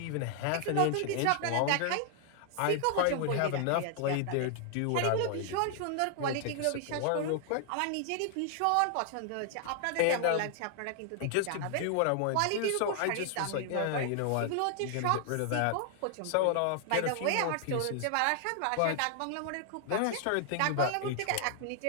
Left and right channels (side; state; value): both; different; correlation 0.00